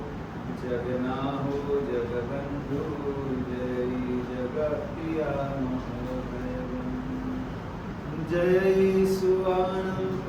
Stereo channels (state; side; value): identical; both; correlation 1.00